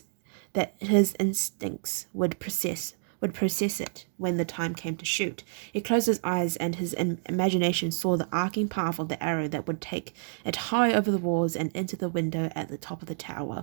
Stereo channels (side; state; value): left; silent; digital silence